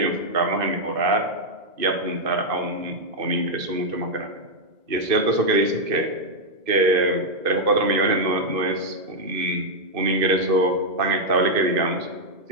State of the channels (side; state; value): left; late; 2.5 ms